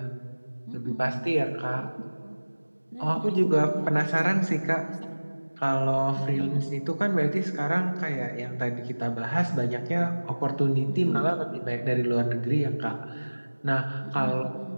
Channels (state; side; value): inverted; both; correlation -1.00